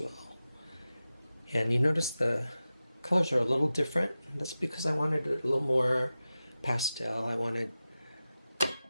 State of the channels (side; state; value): both; inverted; correlation -0.94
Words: And you notice the colors are a little different. That's because I wanted it a little more pastel. I wanted